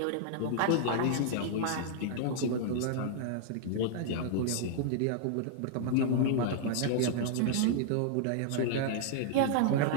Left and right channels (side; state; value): both; different; correlation -0.01